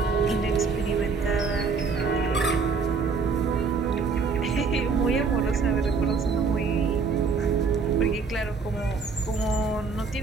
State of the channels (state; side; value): quieter; left; 4.9 dB